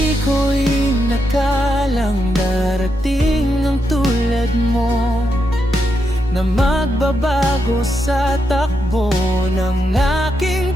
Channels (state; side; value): normal; both; correlation 0.83